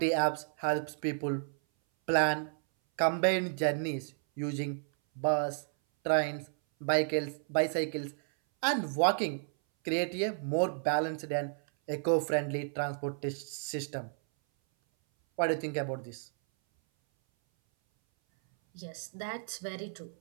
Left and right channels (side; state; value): left; silent; 56 dB below the other